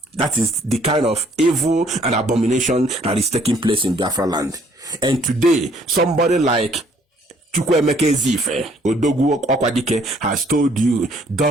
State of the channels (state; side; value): normal; both; correlation 0.63